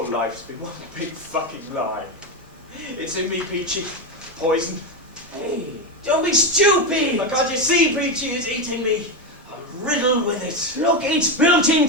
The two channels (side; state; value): both; normal; correlation 0.12